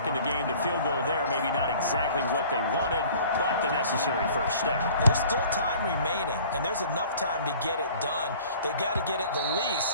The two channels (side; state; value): both; inverted; correlation -0.49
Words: in the game. The field goal there, maybe not exactly what they wanted, but the necessary first step. There's still time remaining, and there's enough time to get it done. They got to get at the